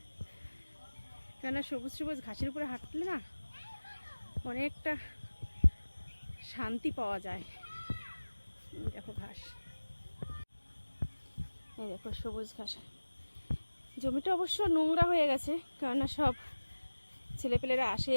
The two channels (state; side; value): inverted; both; correlation -1.00